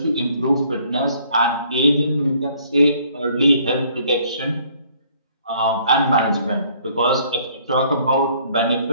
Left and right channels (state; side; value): inverted; both; correlation -0.61